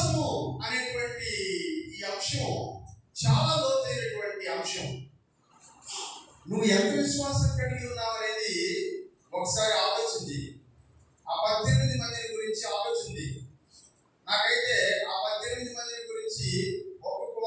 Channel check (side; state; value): both; identical; correlation 1.00